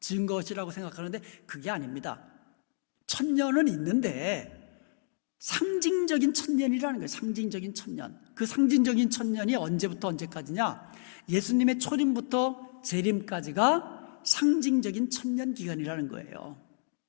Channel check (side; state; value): right; silent; digital silence